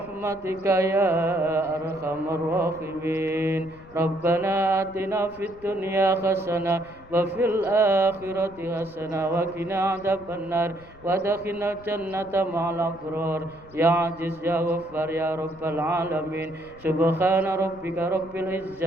يا أرحم الراحمين ربنا آتنا في الدنيا حسنة وفي الآخرة حسنة وقنا عذاب النار وادخلنا الجنة مع الأبرار يا عزيز يا غفار يا رب العالمين سبحان ربك رب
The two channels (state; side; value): noise; left; rumble, 22 dB below the sound